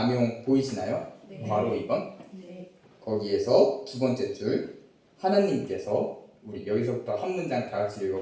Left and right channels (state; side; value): identical; both; correlation 1.00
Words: 보이시나요? 괄호 2번. 거기에서 두 번째 줄, 하나님께서, 우리 여기서부터 한 문장 다 같이